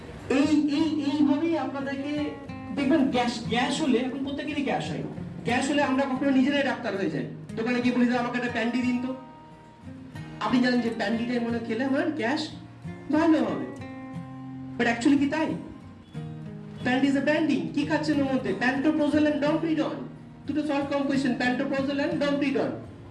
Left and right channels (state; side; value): identical; both; correlation 1.00